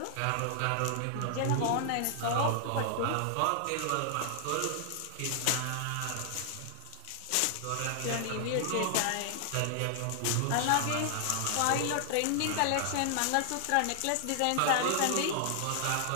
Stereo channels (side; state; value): both; different; correlation 0.00